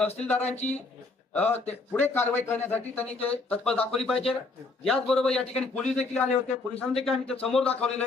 पुढे कारवाई करण्यासाठी त्यांनी ते तत्पर दाखवली पाहिजे. याचबरोबर या ठिकाणी पोलीस देखील आले होते. पोलिसांनी देखील आम्ही ते समोर दाखवलेलं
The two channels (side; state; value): right; quieter; 3.6 dB